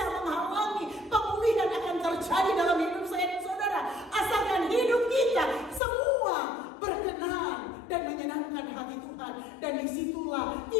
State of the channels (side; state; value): right; drops out; at 5.8 s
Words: menghalangi pemulihan akan terjadi dalam hidup saya dan saudara. Asalkan hidup kita semua berkenan dan menyenangkan hati Tuhan. Dan disitulah